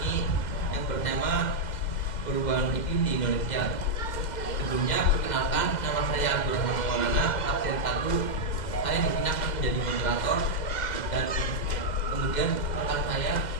yang bertema perubahan iklim di Indonesia. Sebelumnya, perkenalkan, nama saya Abdurrahman Maulana, absen 1. Saya di sini akan menjadi moderator dan kemudian rekan saya.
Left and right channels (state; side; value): late; right; 2.0 ms